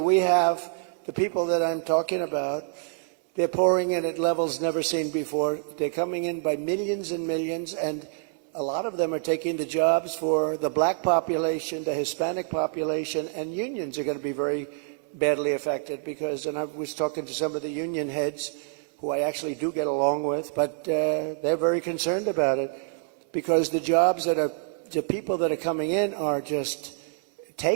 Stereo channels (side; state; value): left; silent; 60 dB below the other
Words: we have the people that I'm talking about. They're pouring in at levels never seen before. They're coming in by millions and millions, and a lot of them are taking the jobs for the black population, the Hispanic population, and unions are going to be very badly affected because, and I was talking to some of the union heads who I actually do get along with, but they're very concerned about it because the jobs that are, the people that are coming in are just